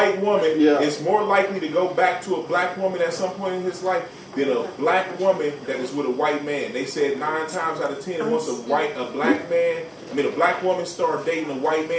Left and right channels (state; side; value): identical; both; correlation 1.00